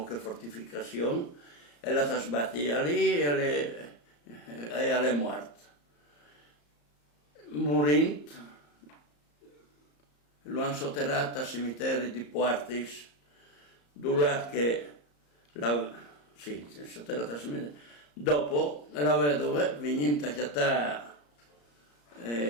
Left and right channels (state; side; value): late; right; 34 ms